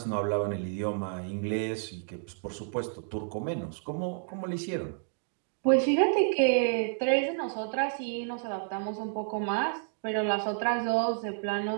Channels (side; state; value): left; silent; digital silence